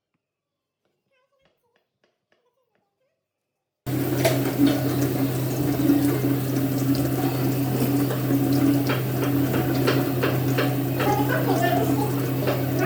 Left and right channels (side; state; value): both; identical; correlation 1.00